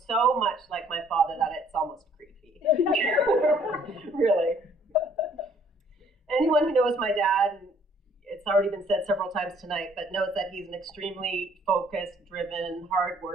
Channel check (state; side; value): normal; both; correlation 0.61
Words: much like my father that it's almost creepy. Really. Anyone who knows my dad, and it's already been said several times tonight, but knows that he's an extremely focused, driven,